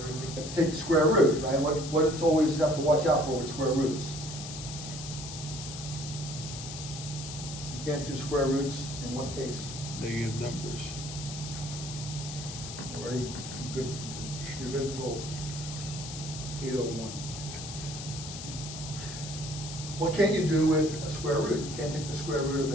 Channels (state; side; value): noise; left; hiss, 9 dB below the sound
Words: have to take the square root, right? What it's always have to watch out for with square roots. You can't do square roots in what case? Negative numbers. Very good. You're good until 8:01. What can't you do with a square root? You can't take the square root of